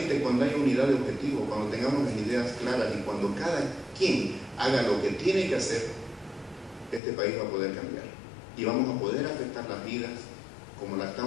cuando haya unidad de objetivo, cuando tengamos las ideas claras y cuando cada quien haga lo que tiene que hacer, este país va a poder cambiar. Y vamos a poder afectar las vidas como la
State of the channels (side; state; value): right; drops out; at 7.0 s